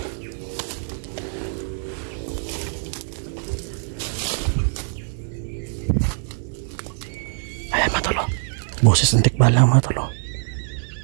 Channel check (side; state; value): left; silent; 63 dB below the other